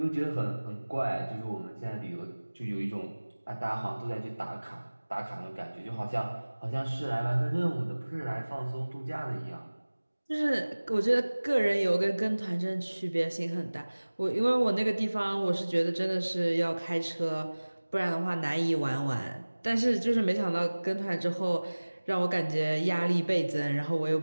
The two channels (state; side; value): inverted; both; correlation -1.00